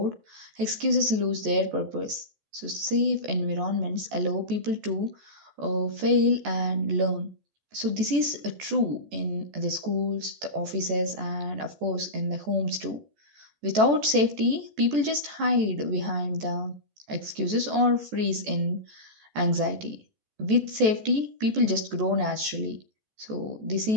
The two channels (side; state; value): left; late; 14 ms